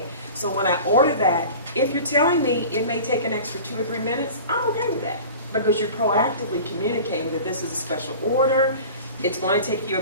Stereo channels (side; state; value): both; inverted; correlation -0.38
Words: So when I order that, if you're telling me it may take an extra 2 or 3 minutes, I'm okay with that. Because you're proactively communicating that this is a special order. It's going to take